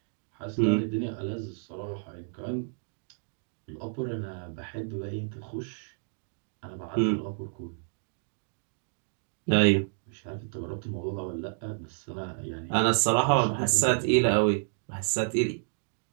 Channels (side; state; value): left; silent; digital silence